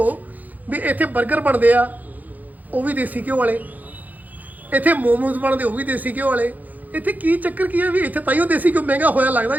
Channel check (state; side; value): late; left; 0.081 ms